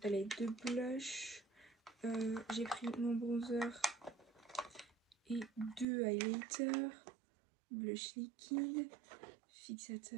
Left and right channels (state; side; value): drops out; left; at 5.9 s